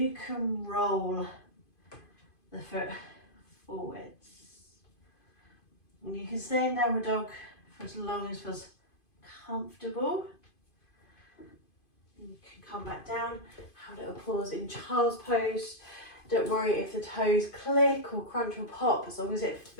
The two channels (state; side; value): late; right; 2.5 ms